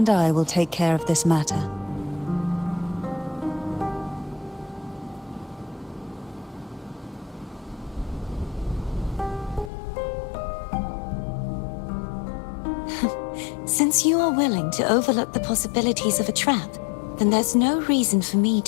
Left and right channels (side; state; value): right; drops out; at 9.7 s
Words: I will take care of this matter. Since you are willing to overlook the possibilities of a trap, then there's no reason for me